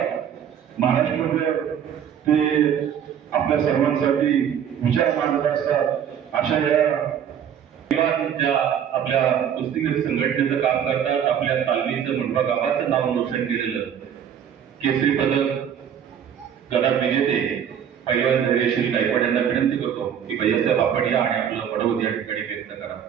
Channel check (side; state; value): left; quieter; 8.8 dB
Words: महाराष्ट्रामध्ये ते आपल्या सर्वांसाठी विचार मांडत असतात. अशा या ज्या आपल्या कुस्तीगीर संघटनेचं काम करतात, आपल्या तालमीचं मुंडवा गावाचं नाव रोशन केलेलं केसरी पदक गदा विजेते पैलवान धैर्यशील गायकवाड यांना विनंती करतो की भैयासाहेब आपण या आणि आपलं पडवत या ठिकाणी व्यक्त करा.